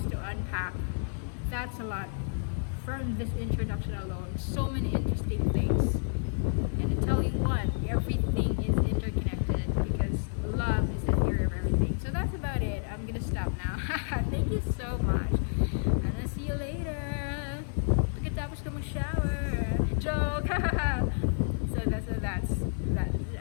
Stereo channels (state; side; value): silent; right; digital silence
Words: to unpack. That's a lot from this introduction alone. So many interesting things. And to tell you what, everything is interconnected, because love is the theory of everything. So that's about it. I'm gonna stop now. Thank you so much. And I'll see you later. Pagkatapos ko mag-shower. Joke! So that's that.